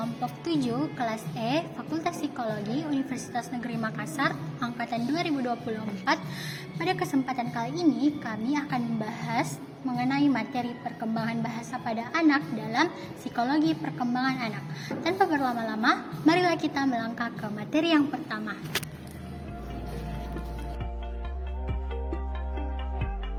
7 kelas E Fakultas Psikologi Universitas Negeri Makassar angkatan 2024. Pada kesempatan kali ini kami akan membahas mengenai materi perkembangan bahasa pada anak dalam psikologi perkembangan anak. Tanpa berlama-lama, marilah kita melangkah ke materi yang pertama.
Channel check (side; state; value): both; identical; correlation 1.00